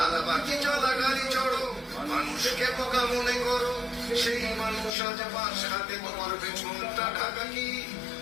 চলা গাড়ি চড়ো, মানুষকে বোকা মনে করো। সেই মানুষ আজ পাশ হাতে তোমার পেছনটা ঢাকা কি?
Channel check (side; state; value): right; drops out; at 4.9 s